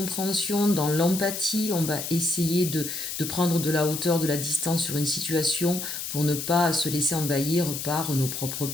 dans l'empathie, on va essayer de prendre de la hauteur, de la distance sur une situation pour ne pas se laisser envahir par nos propres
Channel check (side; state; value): left; noise; hiss, 5 dB below the sound